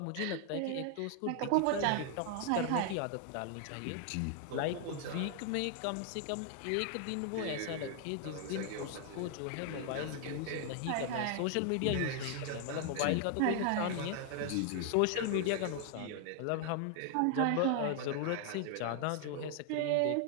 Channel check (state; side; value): different; both; correlation 0.00